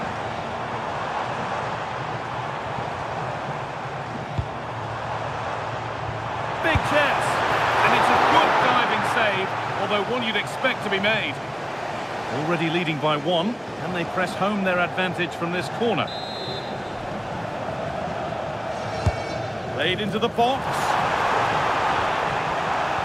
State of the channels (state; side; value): identical; both; correlation 1.00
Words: Big chance. And it's a good diving save, although one you'd expect to be made. Already leading by one. Can they press home their advantage from this corner? Played into the box.